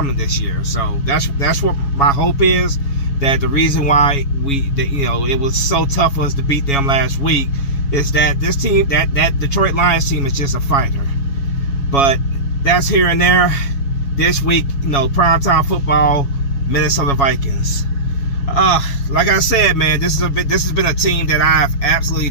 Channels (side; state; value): right; late; 7.2 ms